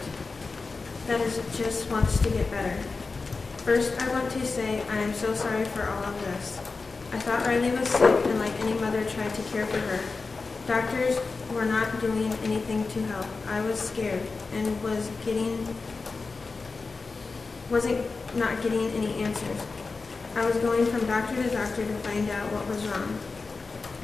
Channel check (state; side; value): quieter; right; 4.1 dB